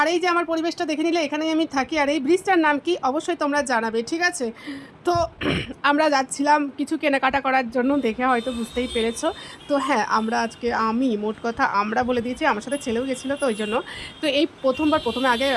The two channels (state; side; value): identical; both; correlation 1.00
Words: এই যে আমার পরিবেশটা দেখে নিলে, এখানেই আমি থাকি। আর এই ব্রিজটার নাম কি অবশ্যই তোমরা জানাবে, ঠিক আছে? তো আমরা যাচ্ছিলাম কিছু কেনাকাটা করার জন্য, দেখে হয়তো বুঝতেই পেরেছো। তো হ্যাঁ, আমি মোট কথা আমরা বলে দিয়েছি, আমার সাথে ছেলেও গেছিলো, তো ওই জন্য। তো এই প্রথমে আগে